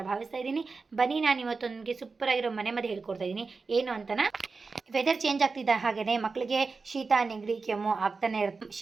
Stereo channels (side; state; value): left; quieter; 4.3 dB